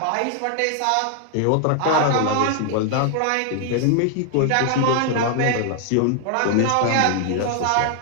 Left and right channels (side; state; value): both; different; correlation 0.00